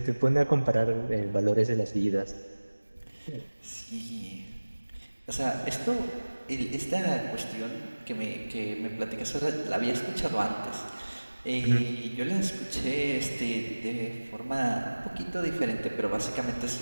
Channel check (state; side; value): inverted; both; correlation -1.00